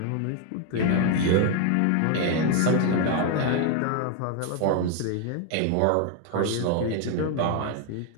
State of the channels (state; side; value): different; both; correlation 0.01